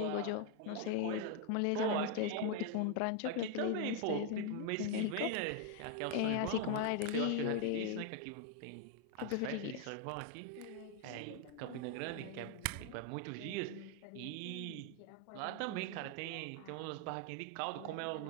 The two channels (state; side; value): different; both; correlation 0.01